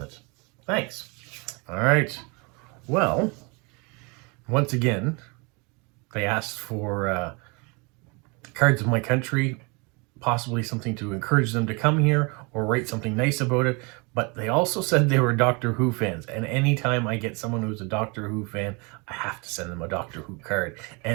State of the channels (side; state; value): left; quieter; 30.0 dB